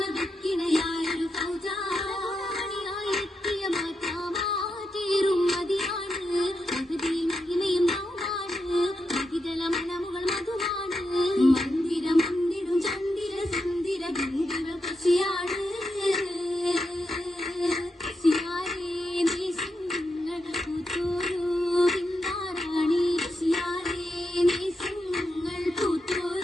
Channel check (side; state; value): both; normal; correlation 0.86